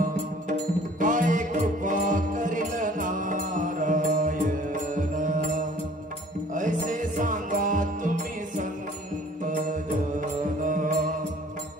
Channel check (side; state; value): both; normal; correlation 0.52